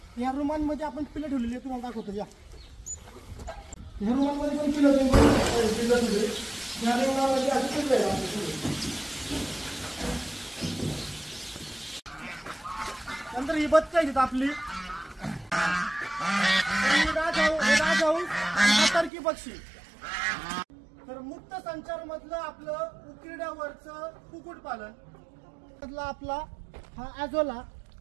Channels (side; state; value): left; drops out; at 19.1 s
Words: ह्या रूमांमध्ये आपण पिल्लं ठेवलेली आहे. तुम्हाला दाखवतो या ह्या रूमांमध्ये पण पिल्लं तुम्ही बघू शकता. पिल्लं ठेवली ह्या रूमामध्ये अशी पिल्लं आहे. नंतर ही बत्ती आहे आपली टर्की पक्षी. तर मुक्त संचार मधलं आपलं उकिरड्यावरचं कुक्कुटपालन मधला आपला हा ॲझोला,